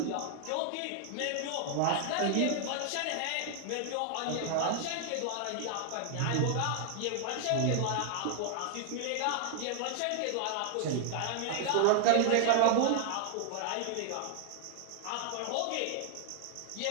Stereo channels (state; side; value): different; both; correlation 0.00